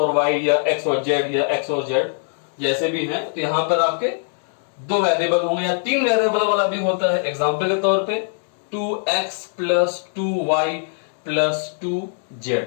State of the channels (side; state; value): right; silent; 65 dB below the other